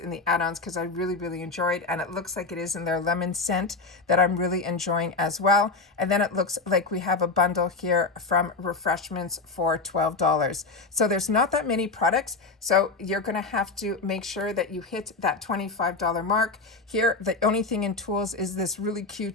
the add-ons because I really, really enjoyed, and it looks like it is in their lemon scent that I'm really enjoying as well. And then it looks like we have a bundle here from Refreshments for $12. So there's not that many products, so you're going to have to make sure that you hit that $25 mark. Here, the only thing in tools is this really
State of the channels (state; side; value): quieter; right; 3.8 dB